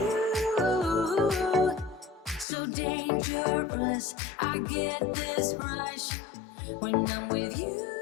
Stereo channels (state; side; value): drops out; right; at 2.5 s